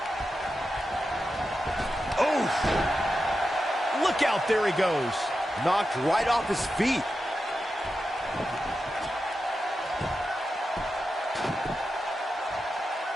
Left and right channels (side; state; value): both; normal; correlation 0.90